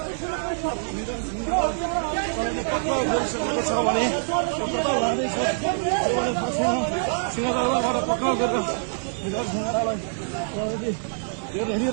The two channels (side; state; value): left; silent; digital silence